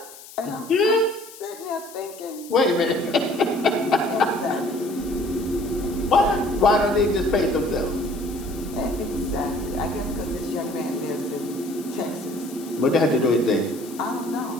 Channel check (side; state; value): left; noise; hiss, 18 dB below the sound